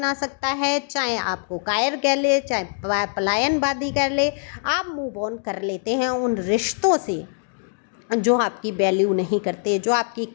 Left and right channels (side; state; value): right; silent; digital silence